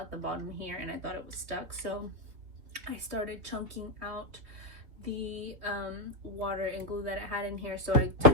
the bottom here and I thought it was stuck, so I started chunking out the water and glue that it had in here. So I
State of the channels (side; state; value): left; late; 3.3 ms